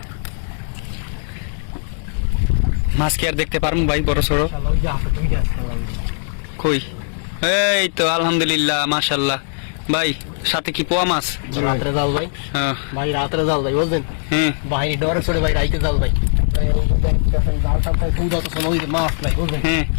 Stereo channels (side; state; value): right; silent; digital silence